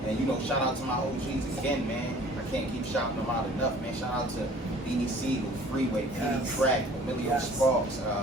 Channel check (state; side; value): normal; both; correlation 0.50